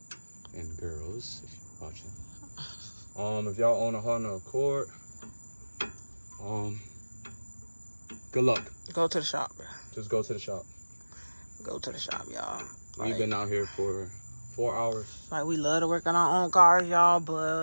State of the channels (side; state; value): both; inverted; correlation -1.00